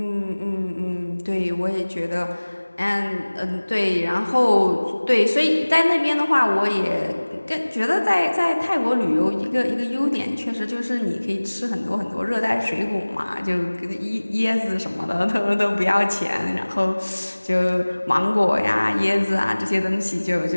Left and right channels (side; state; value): both; inverted; correlation -1.00